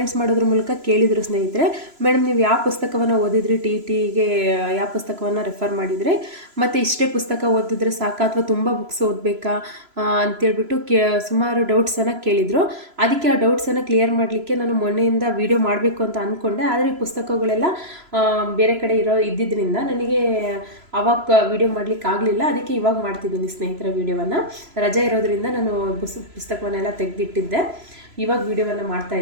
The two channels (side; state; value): left; late; 3.0 ms